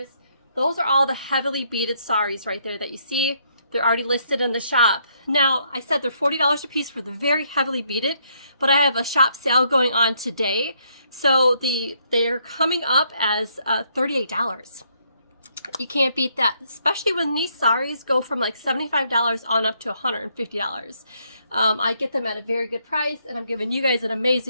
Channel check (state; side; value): inverted; both; correlation -0.72